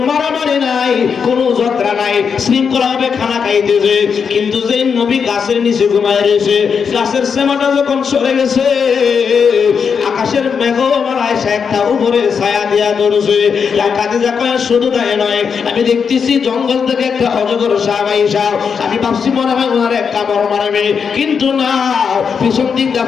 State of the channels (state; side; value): quieter; right; 6.3 dB